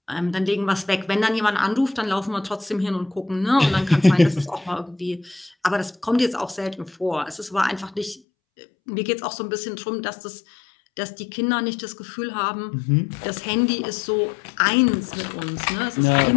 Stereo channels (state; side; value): drops out; right; at 8.2 s